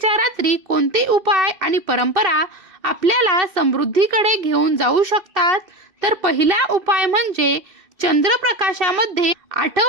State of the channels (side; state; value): left; late; 2.7 ms